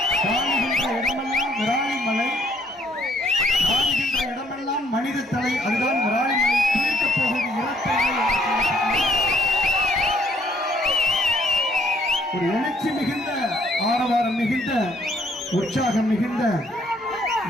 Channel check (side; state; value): both; normal; correlation 0.65